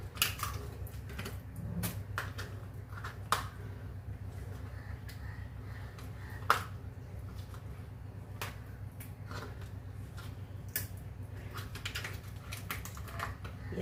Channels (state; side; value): identical; both; correlation 1.00